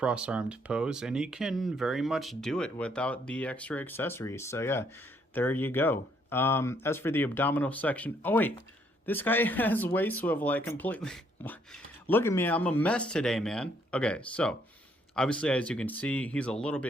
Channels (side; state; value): both; normal; correlation 0.69